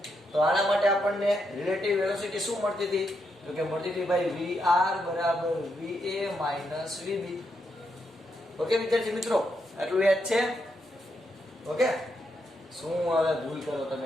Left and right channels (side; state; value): both; normal; correlation 0.80